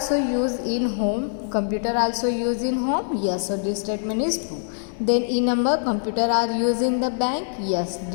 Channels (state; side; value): silent; right; digital silence